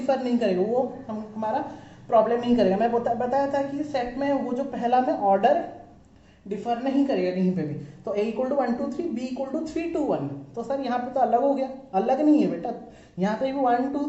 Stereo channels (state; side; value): identical; both; correlation 1.00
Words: नहीं करेगा, वो हमारा प्रॉब्लम नहीं करेगा। मैं बताया था कि सेट में वो जो पहला में ऑर्डर डिफर नहीं करेगा कहीं पे भी। तो a equal to 1 2 3, b equal to 3 2 1, तो सर यहाँ पे तो अलग हो गया, अलग नहीं है बेटा, यहाँ पे भी 1 2